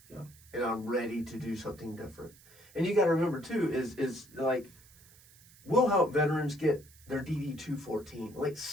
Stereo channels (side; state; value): right; noise; hiss, 24 dB below the sound